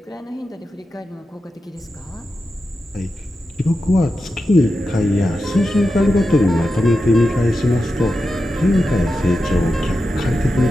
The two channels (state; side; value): normal; both; correlation 0.90